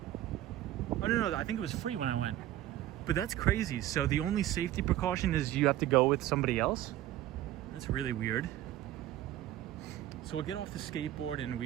Oh no, I think it was free when I went. But that's crazy. So the only safety precaution is you have to go with somebody else? That's really weird. So we'll get off the skateboard and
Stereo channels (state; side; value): quieter; left; 13.5 dB